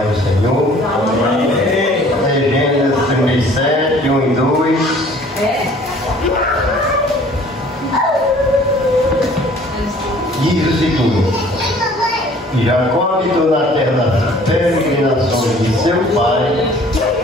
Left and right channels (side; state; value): both; normal; correlation 0.53